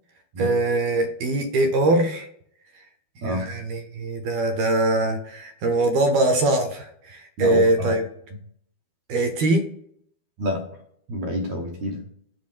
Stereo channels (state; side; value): late; left; 12 ms